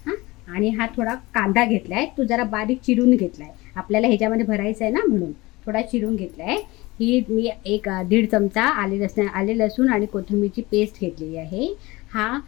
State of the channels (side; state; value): right; quieter; 21.4 dB